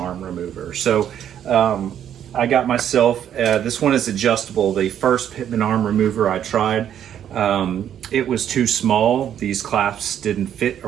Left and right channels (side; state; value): left; quieter; 9.9 dB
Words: remover. So I got myself, this one is adjustable. The first pitman arm remover I tried, it was too small. These clasps didn't fit